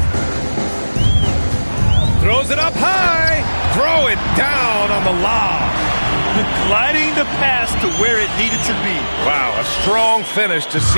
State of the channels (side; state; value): both; inverted; correlation -1.00